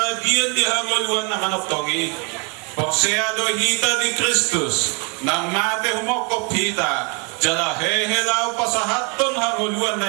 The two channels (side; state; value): left; quieter; 34.3 dB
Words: di hanguluan na manoptongi porseado hita di Kristus nang mate humokop hita jala hehelaw pa sa haton hanguluan